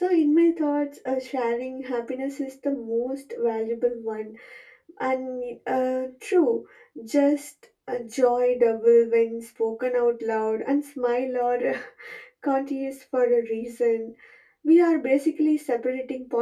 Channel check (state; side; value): identical; both; correlation 1.00